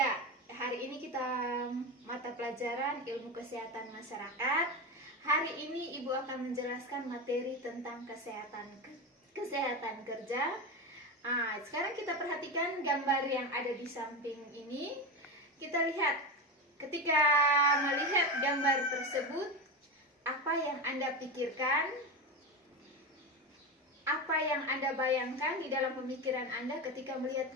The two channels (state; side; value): normal; both; correlation 0.19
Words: hari ini kita mata pelajaran ilmu kesehatan masyarakat. Hari ini Ibu akan menjelaskan materi tentang kesehatan kerja. Sekarang kita perhatikan gambar yang ada di samping ini. Kita lihat, ketika melihat gambar tersebut, apa yang Anda pikirkan? Apa yang Anda bayangkan di dalam pemikiran Anda ketika melihat